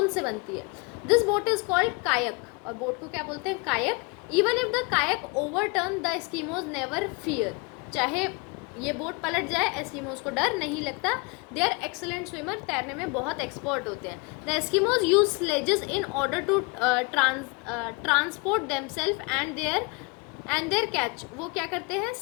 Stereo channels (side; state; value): right; quieter; 28.8 dB